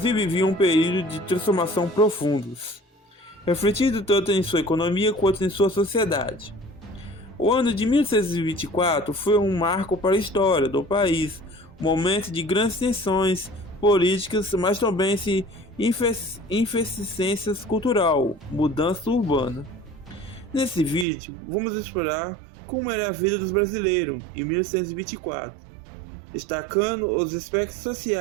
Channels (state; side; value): drops out; left; at 21.1 s